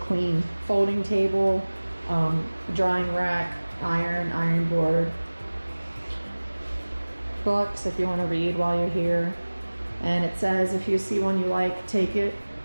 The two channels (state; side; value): inverted; both; correlation -1.00